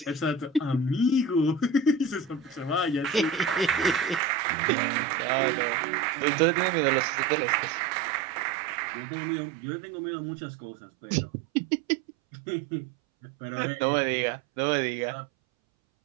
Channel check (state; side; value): drops out; left; at 4.2 s